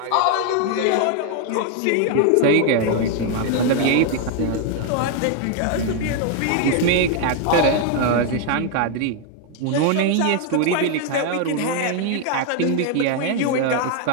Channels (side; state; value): both; different; correlation 0.01